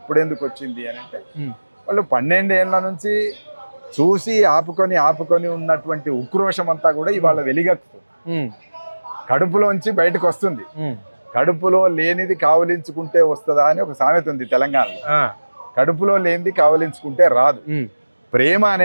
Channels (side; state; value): both; inverted; correlation -1.00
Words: వచ్చింది అని అంటే, వాళ్ళు 12 ఏళ్ల నుంచి చూసి ఆపుకొని ఉన్నటువంటి ఉక్రోషం అంతా కూడా ఇవాళ వెలిగెక్కుతుంది. కడుపులోంచి బయటకు వస్తుంది. కడుపులో లేనిది కావలించుకుంటే వస్తుందా అని ఒక సామెత ఉంది తెలంగాణలో. కడుపులో లేనిది కావలించుకుంటే రాదు. ప్రేమ